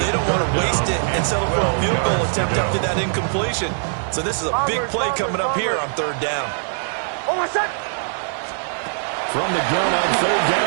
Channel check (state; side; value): silent; left; 65 dB below the other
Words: don't want to waste it and settle for a field goal attempt after that incompletion. So this is a big play coming up here on 3rd down. From the gun on 3rd